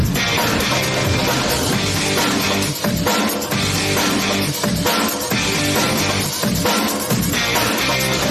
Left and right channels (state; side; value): identical; both; correlation 1.00